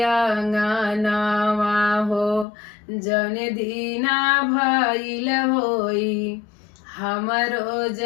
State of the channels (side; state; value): right; drops out; at 2.5 s